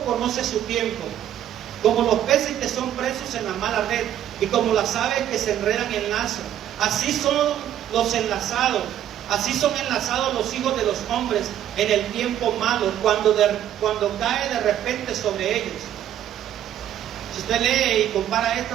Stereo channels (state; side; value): quieter; left; 11.1 dB